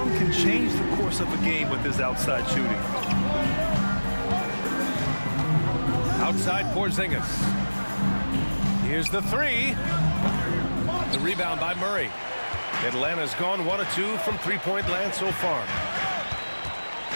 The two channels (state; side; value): inverted; both; correlation -1.00